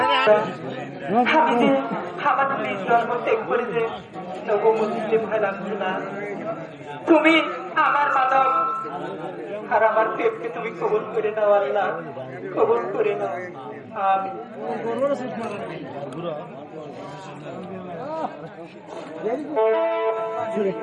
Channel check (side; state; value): both; identical; correlation 1.00